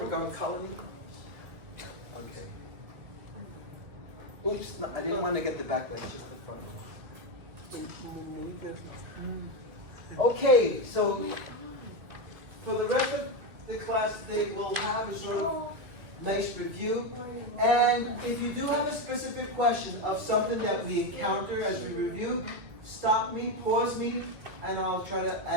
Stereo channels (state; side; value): late; left; 2.4 ms